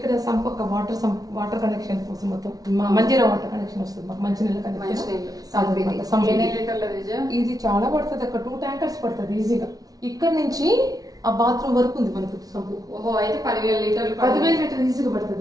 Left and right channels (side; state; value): left; late; 0.18 ms